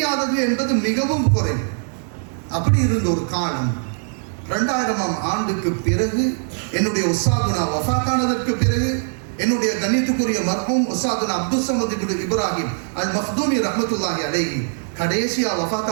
என்பது மிகவும் குறைவு. அப்படி இருந்த ஒரு காலம் 2000ஆம் ஆண்டுக்கு பிறகு என்னுடைய உஸ்தாதுனா வஃபாத்தானதற்கு பிறகு என்னுடைய கண்ணியத்துக்குரிய மர்ஹூம் உஸ்தாதுனா அப்துல் ஸமத் இப்னு இப்ராஹிம் அல் மக்தூமி ரஹ்மத்துல்லாஹி அலைஹி கடைசியா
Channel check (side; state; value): left; silent; digital silence